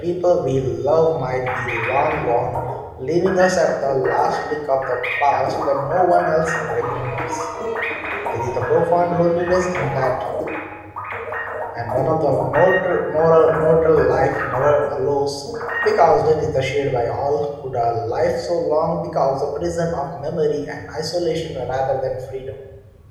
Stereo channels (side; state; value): both; identical; correlation 1.00